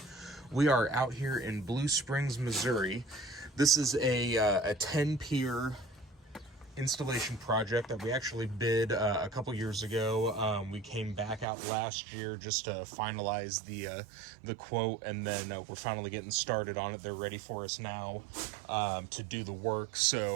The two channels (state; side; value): drops out; left; at 11.5 s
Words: We are out here in Blue Springs, Missouri. This is a 10-pier installation project that we actually bid a couple years ago. We came back out last year just to finalize the quote, and then we're finally getting started on it. They're ready for us now to do the work.